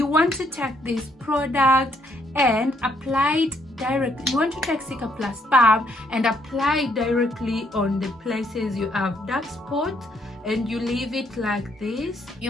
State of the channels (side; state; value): both; normal; correlation 0.71